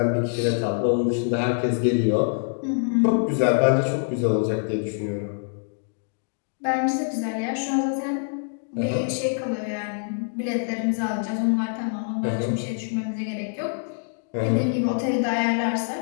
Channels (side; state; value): right; silent; digital silence